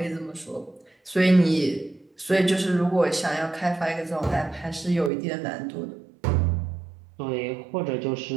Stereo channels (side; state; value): left; drops out; at 5.1 s